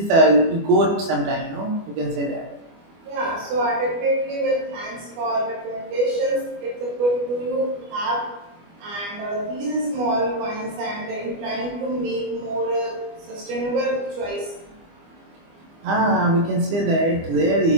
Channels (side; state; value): left; late; 25 ms